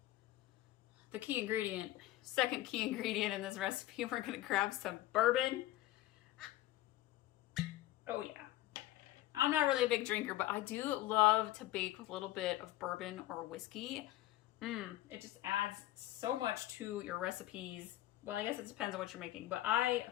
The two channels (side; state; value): right; quieter; 15.7 dB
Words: the key ingredient, second key ingredient in this recipe. We're gonna grab some bourbon. Oh yeah. I'm not really a big drinker, but I do love to bake with a little bit of bourbon or whiskey. It just adds so much to your recipes. Well, I guess it depends on what you're making, but I